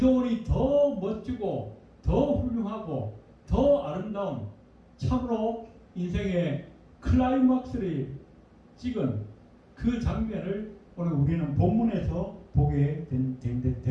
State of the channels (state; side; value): identical; both; correlation 1.00